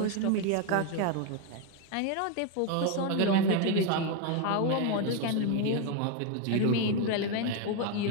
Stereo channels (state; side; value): different; both; correlation 0.01